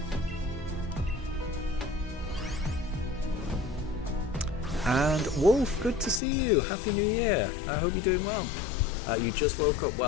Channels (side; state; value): right; drops out; at 6.2 s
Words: And Wolf, good to see you. Happy New Year. I hope you're doing well. You just woke up.